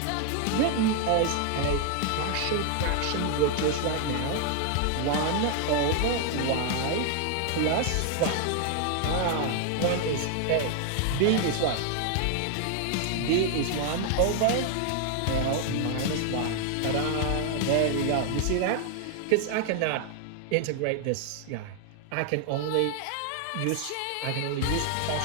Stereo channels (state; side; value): different; both; correlation 0.00